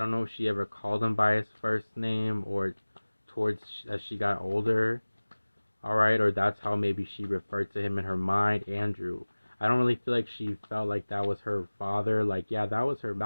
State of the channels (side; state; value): both; inverted; correlation -1.00